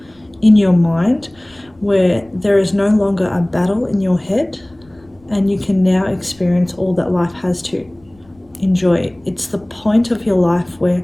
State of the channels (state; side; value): noise; left; rumble, 30 dB below the sound